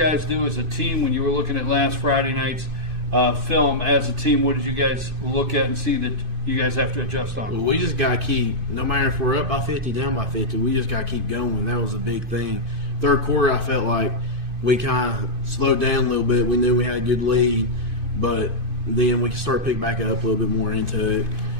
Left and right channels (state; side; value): late; left; 2.5 ms